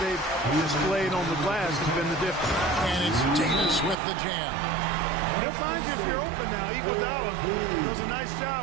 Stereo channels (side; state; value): left; drops out; at 4.0 s